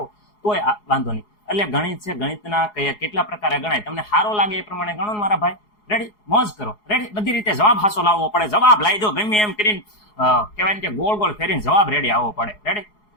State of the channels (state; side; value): late; right; 4.8 ms